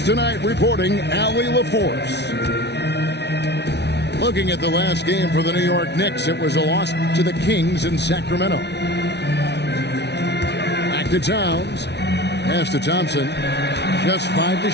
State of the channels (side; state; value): right; late; 0.50 ms